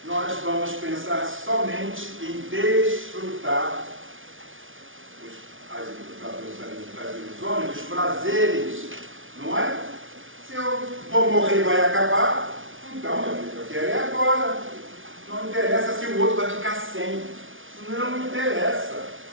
nós vamos pensar somente em desfrutar as ilusões, os prazeres, não é? Se eu vou morrer e vai acabar, então, meu filho, eu quero é agora. Não interessa se o outro vai ficar sem. Não me interessa.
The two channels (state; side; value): late; left; 0.57 ms